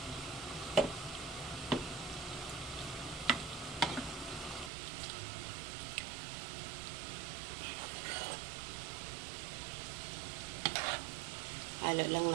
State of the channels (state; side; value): drops out; left; at 4.7 s